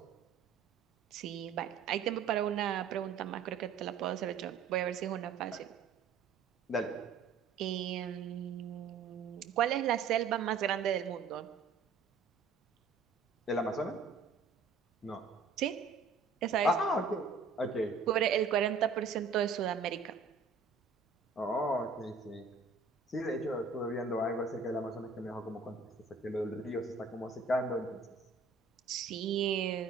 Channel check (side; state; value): left; quieter; 4.9 dB